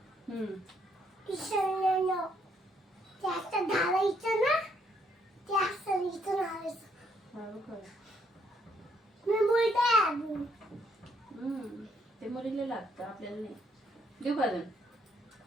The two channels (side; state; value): both; normal; correlation 0.71